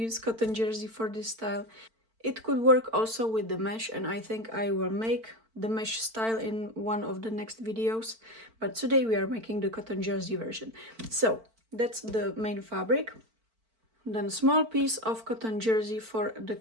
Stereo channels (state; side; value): late; left; 4.5 ms